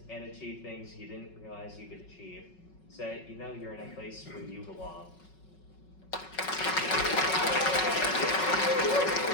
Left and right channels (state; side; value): late; right; 5.4 ms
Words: and achieve things you didn't realize you could achieve, so that you know you're in a place where you belong.